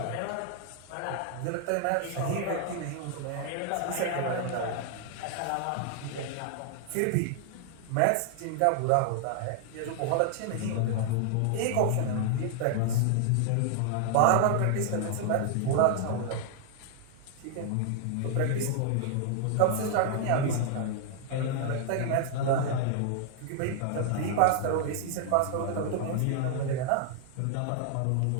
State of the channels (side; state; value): both; different; correlation 0.00